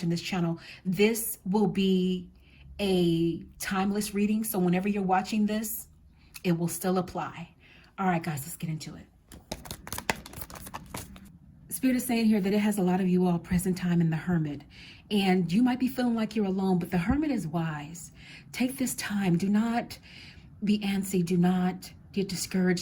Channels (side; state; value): both; identical; correlation 1.00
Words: this channel. This will be a timeless reading, so whenever you're watching this, it will still apply. All right, guys, let's get into it. Spirit is saying here that it has a lot of you all present time in the Hermit, and you might be feeling like you're alone, but the Hermit is wise. Take this time. Do not be antsy. Do not get